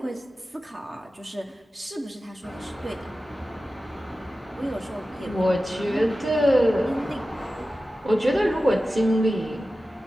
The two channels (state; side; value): normal; both; correlation 0.94